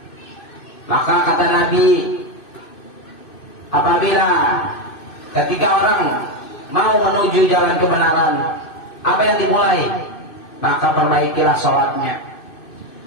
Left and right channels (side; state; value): right; late; 2.6 ms